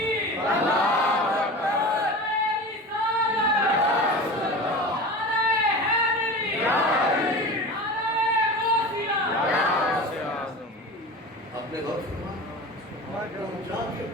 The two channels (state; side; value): normal; both; correlation 0.32